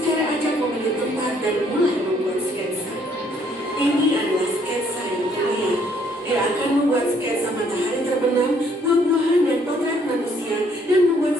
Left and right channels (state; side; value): normal; both; correlation 0.65